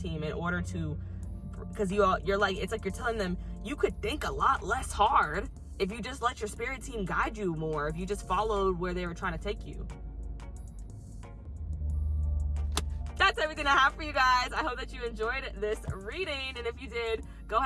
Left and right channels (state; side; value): identical; both; correlation 1.00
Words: in order to, because you're like, it's like you're telling them you could think a lot less hard if you just let your spirit team guide you more, if you just followed where they were trying to take you. That's everything I have for you guys. I hope that you enjoyed this reading, and if you did, go